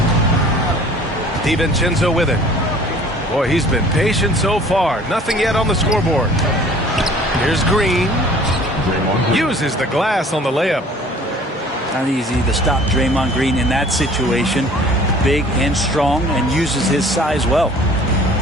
DiVincenzo with it. Boy, he's been patient so far. Nothing yet on the scoreboard. Here's Green. Uses the glass on the layup. Not easy to stop Draymond Green in that situation. Big and strong, and uses his size well.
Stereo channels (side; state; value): both; normal; correlation 0.50